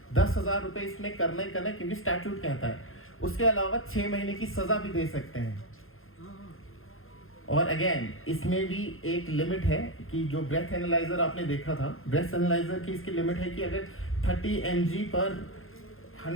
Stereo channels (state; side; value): late; right; 0.60 ms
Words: 10,000 रुपये इसमें करना ही करना है, क्योंकि स्टैट्यूट कहता है। उसके अलावा 6 महीने की सजा भी दे सकते हैं। और अगेन इसमें भी एक लिमिट है कि जो ब्रेथ एनालाइजर आपने देखा था, ब्रेथ एनालाइजर की इसकी लिमिट है कि अगर 30 mg पर